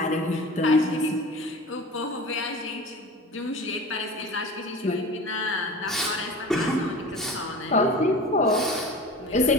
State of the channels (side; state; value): both; normal; correlation 0.36